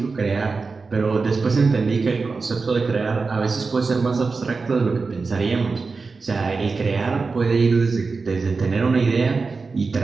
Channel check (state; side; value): quieter; left; 4.3 dB